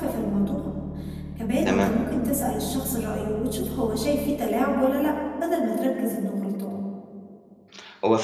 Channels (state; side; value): identical; both; correlation 1.00